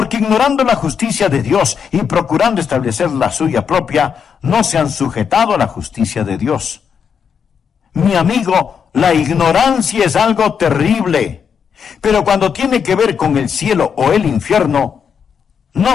ignorando la justicia de Dios y procurando establecer la suya propia, no se han sujetado a la justicia de Dios. Mi amigo, la ignorancia es algo terrible. Pero cuando tiene que ver con el cielo o el infierno, no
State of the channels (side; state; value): right; quieter; 7.0 dB